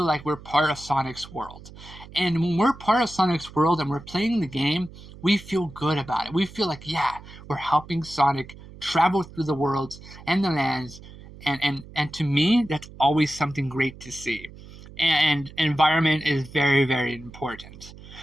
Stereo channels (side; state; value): right; noise; hum, 18 dB below the sound